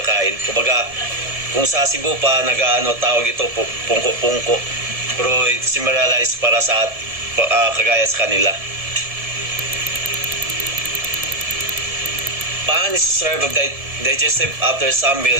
Kumbaga, kung sa Cebu pa tawag ito pungko-pungko, pero similarized para sa kagaya sa kanila. Pan is served of digestive after some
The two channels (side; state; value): left; late; 1.7 ms